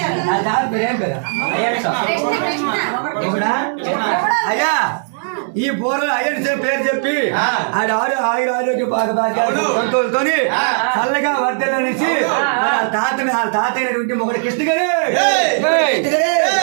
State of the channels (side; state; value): left; silent; digital silence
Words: నా దారి ప్రేమ కదా ఎవడా? అయ్యా ఈ బోర్లు అయ్యని పేరు చెప్పి ఆడ ఆయుర ఆరోగ్య సంతోషంతోని చల్లగా వర్ధలనేసి తాతైనటువంటి మొగడు కృష్ణ గారు